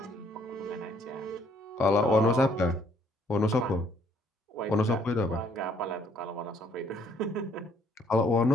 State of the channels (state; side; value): normal; both; correlation 0.65